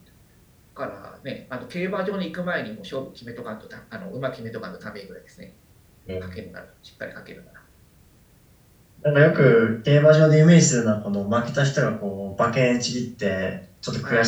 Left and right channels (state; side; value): identical; both; correlation 1.00